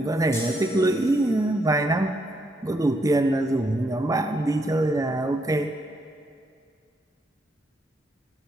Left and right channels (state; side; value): normal; both; correlation 0.76